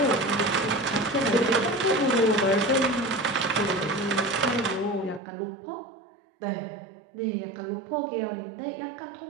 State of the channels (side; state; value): left; drops out; at 5.2 s